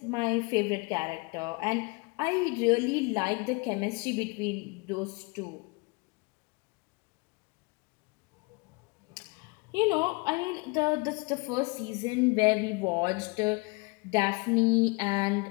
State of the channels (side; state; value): right; quieter; 28.0 dB